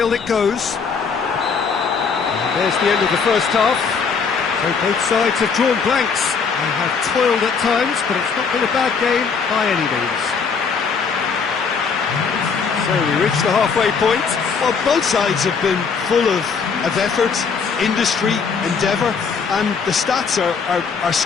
it goes. And there's the end of the first half. So both sides have drawn blanks. They have toiled at times, but it's not been a bad game by any means. So we reach the halfway point. Well, both sides have been full of effort, industry, endeavour, and the stats are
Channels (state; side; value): quieter; right; 5.6 dB